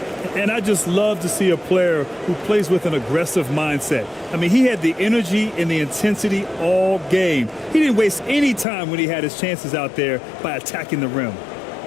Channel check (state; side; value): drops out; right; at 8.7 s